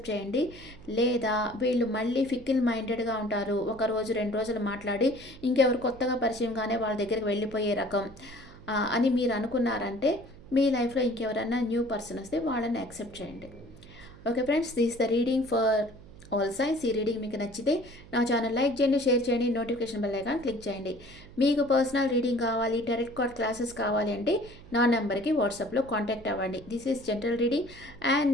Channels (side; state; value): right; noise; hum, 20 dB below the sound